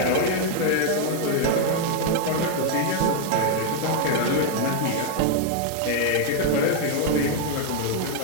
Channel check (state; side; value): different; both; correlation 0.00